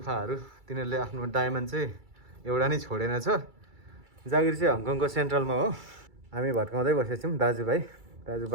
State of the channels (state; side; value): late; left; 2.3 ms